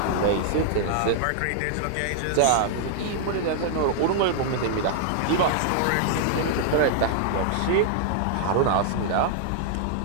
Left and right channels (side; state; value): both; different; correlation -0.01